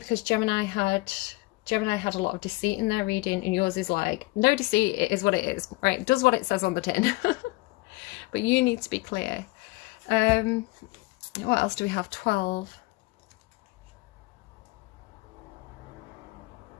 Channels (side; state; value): right; quieter; 22.3 dB